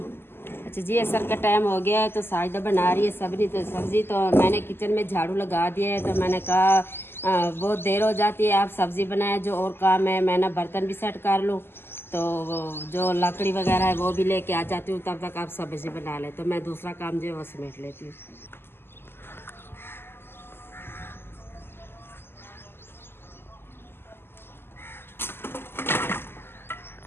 अच्छा जी असर का टाइम हो गया है, तो साजदा बना रही है सब्ज़ी। तो मैंने किचन में झाड़ू लगा दिया है, तो मैंने कहा बहुत देर हो जाती है, आप सब्ज़ी बनाए, जो और काम है मैं ना बर्तन भी सेट कर लूँ। तो जो लकड़ी वगैरह है वो भी लेके आ जाती हूँ, तब तक आप सब्ज़ी बना लें, तो मैं दूसरा काम जो है वो समेट लेती हूँ।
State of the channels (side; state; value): right; late; 0.11 ms